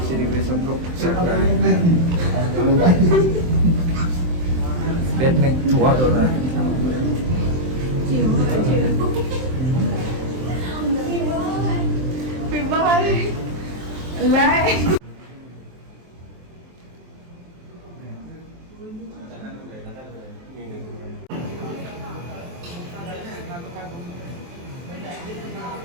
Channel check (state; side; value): late; left; 23 ms